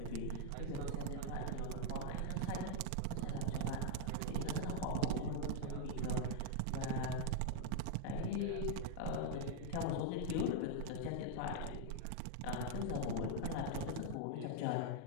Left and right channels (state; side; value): different; both; correlation -0.01